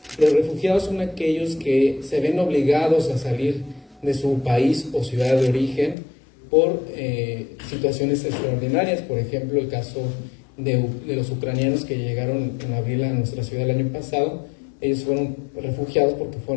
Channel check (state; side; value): drops out; right; at 6.0 s